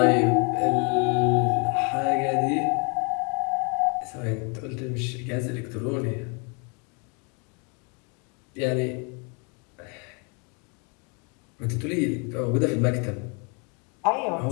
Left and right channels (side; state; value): right; quieter; 34.4 dB